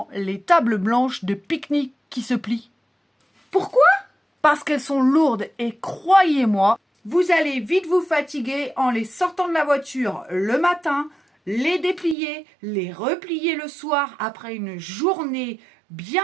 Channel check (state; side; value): drops out; left; at 12.2 s